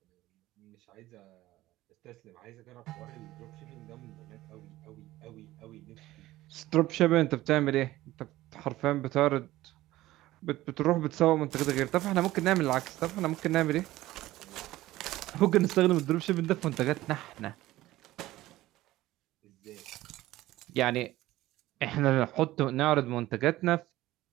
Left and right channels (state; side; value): quieter; left; 16.4 dB